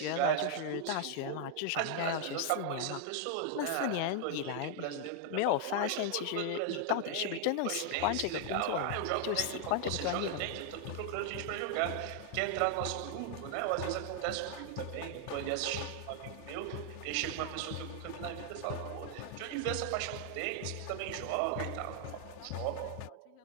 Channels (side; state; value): both; different; correlation 0.00